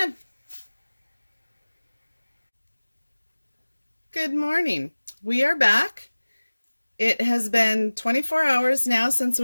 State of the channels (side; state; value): both; inverted; correlation -1.00